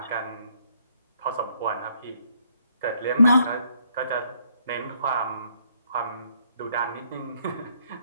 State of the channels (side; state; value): both; inverted; correlation -0.69